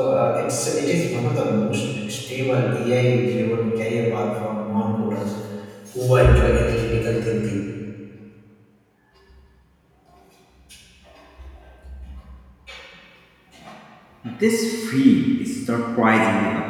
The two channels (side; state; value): both; identical; correlation 1.00